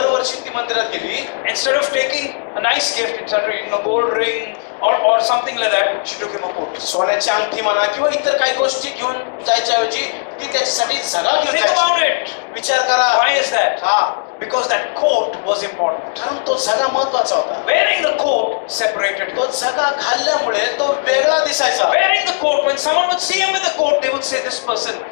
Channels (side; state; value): right; silent; digital silence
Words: ती मंदिरात गेली. Instead of taking a nice gift, instead of gold ring or something like that, she took him a coat. सोन्याची अंगठी म्हणा किंवा इतर काही गोष्टी घेऊन जायच्या ऐवजी ती त्याच्यासाठी झगा घेऊन Think जायची. about it. विचार करा. Why is that? हा, Because that coat was important. कारण तो झगा महत्वाचा होता. Wearing the coat separated him. तो झगा घालल्यामुळे तो वेगळा दिसायचा. Wearing the coat, when someone would see him with the coat, they would say this person